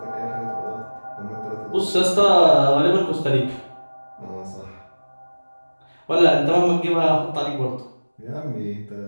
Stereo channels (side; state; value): both; inverted; correlation -1.00